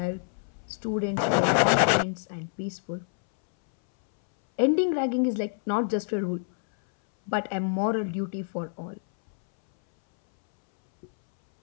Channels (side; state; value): right; silent; 60 dB below the other